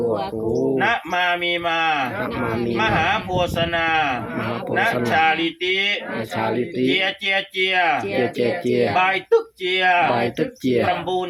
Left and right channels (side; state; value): both; identical; correlation 1.00